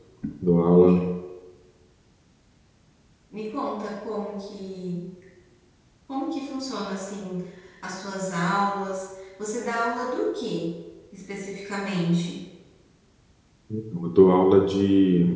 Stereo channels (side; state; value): both; identical; correlation 1.00